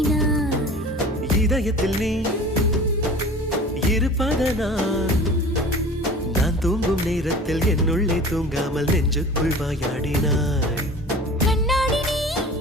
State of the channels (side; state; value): both; normal; correlation 0.41